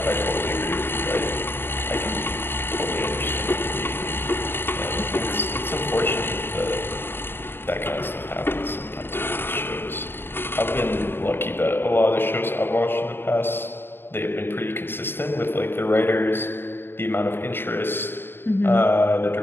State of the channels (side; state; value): right; late; 0.10 ms